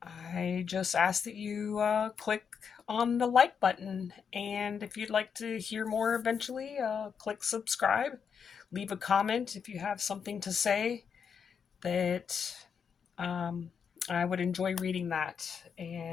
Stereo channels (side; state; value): right; quieter; 6.8 dB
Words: I just ask that you click on the like button. And if you'd like to hear more eventually, click subscribe. Leave a comment if you have something to say that um, I would enjoy reading that